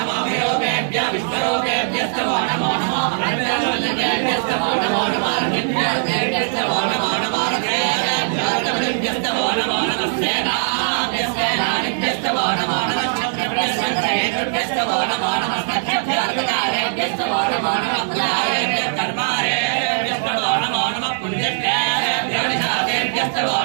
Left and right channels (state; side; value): silent; left; 66 dB below the other